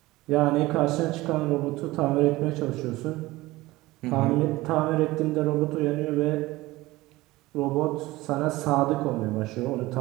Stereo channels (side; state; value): left; quieter; 19.2 dB